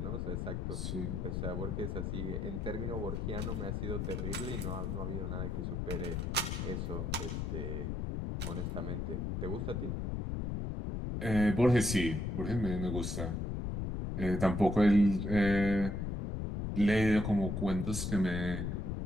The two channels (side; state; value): left; noise; rumble, 2 dB below the sound